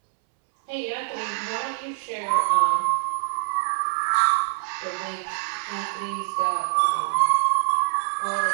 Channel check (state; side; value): silent; left; 62 dB below the other